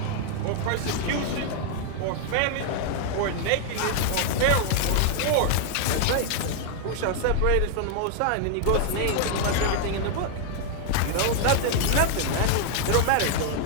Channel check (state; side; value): different; both; correlation 0.00